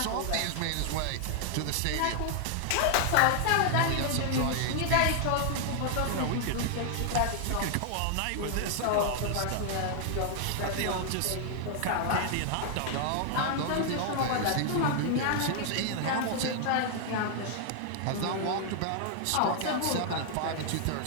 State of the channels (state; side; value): different; both; correlation 0.00